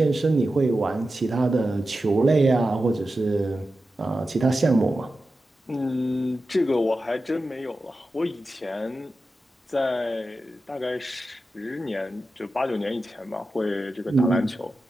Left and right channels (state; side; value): normal; both; correlation 0.92